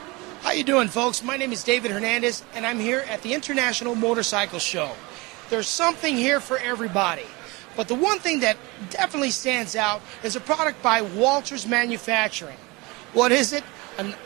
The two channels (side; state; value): left; quieter; 24.8 dB